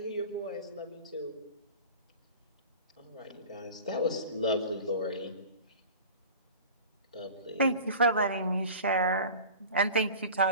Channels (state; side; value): inverted; both; correlation -0.38